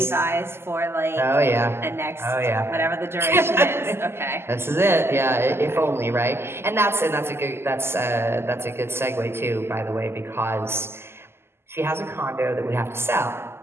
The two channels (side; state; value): left; late; 0.12 ms